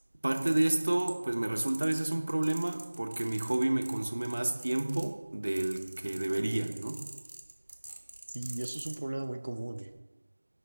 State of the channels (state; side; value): inverted; both; correlation -1.00